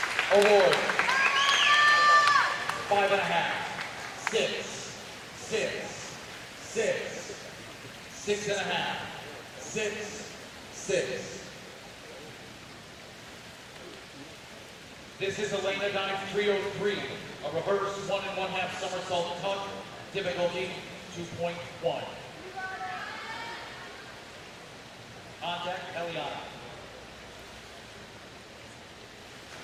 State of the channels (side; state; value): both; identical; correlation 1.00